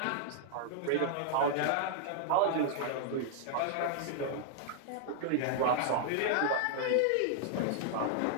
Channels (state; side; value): different; both; correlation -0.01